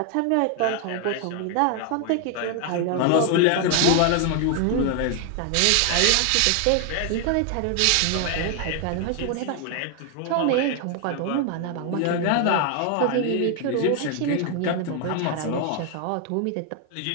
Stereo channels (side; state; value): both; different; correlation 0.00